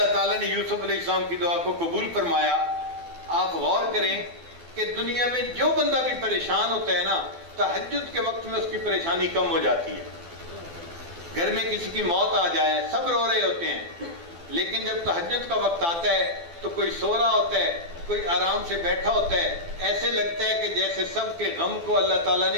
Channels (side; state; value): left; late; 12 ms